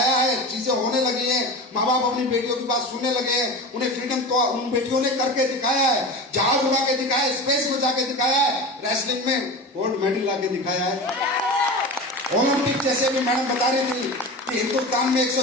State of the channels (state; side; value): normal; both; correlation 0.30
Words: है, चीजें होने लगी हैं, माँ बाप अपनी बेटियों की बात सुनने लगे हैं। उन्हें फ्रीडम तो उन बेटियों ने करके दिखाया है, जहाज उड़ा के दिखाया है, स्पेस में जाके दिखाया है, रेसलिंग में गोल्ड मेडल ला के दिखाया है। ओलंपिक जैसे भी मैडम बता रही थी कि हिंदुस्तान में